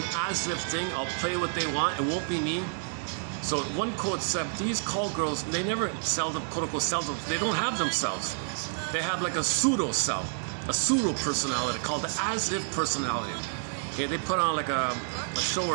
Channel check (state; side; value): silent; left; digital silence